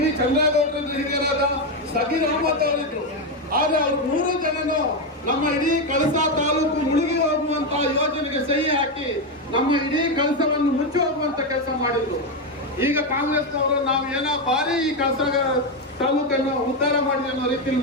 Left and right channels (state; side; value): normal; both; correlation 0.08